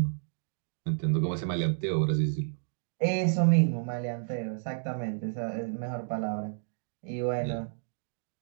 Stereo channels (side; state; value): left; silent; digital silence